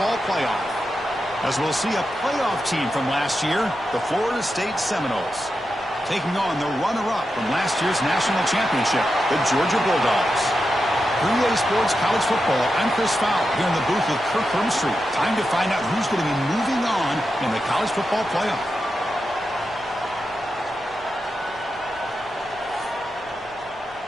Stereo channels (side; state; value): right; noise; rumble, 27 dB below the sound